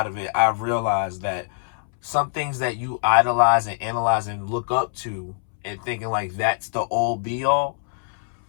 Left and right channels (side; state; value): right; silent; 63 dB below the other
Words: of it, I realized that some things that you idolize and analyze and look up to and thinking like that's the all be all,